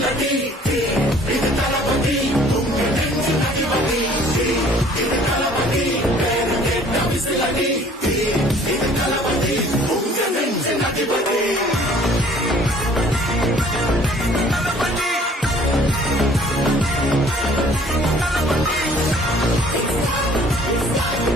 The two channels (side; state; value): both; normal; correlation 0.54